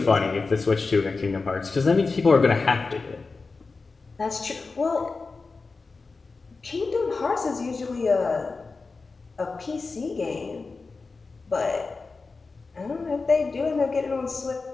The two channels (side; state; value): right; quieter; 4.1 dB